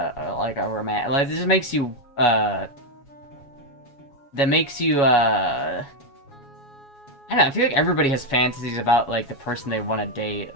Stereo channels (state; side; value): late; right; 7.2 ms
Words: a romantic, like, it just makes you, that makes you, I don't know, I feel like everybody has fantasies about, like, the person they want to date,